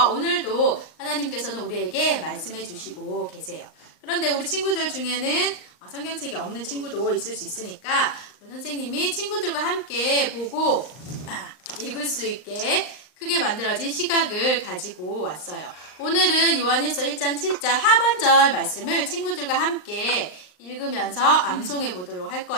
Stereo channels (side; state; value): right; late; 39 ms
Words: 오늘도 하나님께서는 우리에게 말씀해 주시고 계세요. 그런데 우리 친구들 중에는 성경책이 없는 친구도 있을 수 있으니까 우리 선생님이 친구들과 함께 보고 읽을 수 있게 크게 만들어진 시각을 가지고 왔어요. 오늘은 요한일서 1장 7절 하반절 말씀을 친구들과 함께 읽으면서 암송해 보도록 할